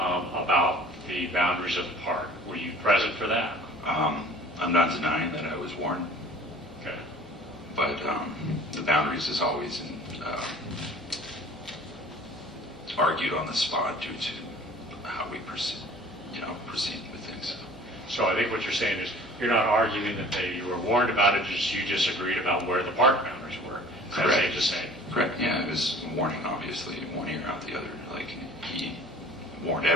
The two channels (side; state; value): both; normal; correlation 0.48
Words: the boundaries of the park. Were you present for that? I'm not denying that I was warned, Okay. but the boundaries is always argued on the spot due to how we proceed with things. So I think what you're saying is you're not arguing that you were warned about it, just you disagreed about where the park boundaries were. Is that safe to say? Correct. Yeah, it was a warning, obviously, one ear out the other. Like, he warned